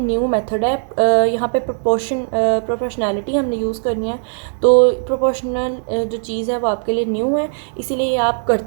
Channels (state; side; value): silent; left; digital silence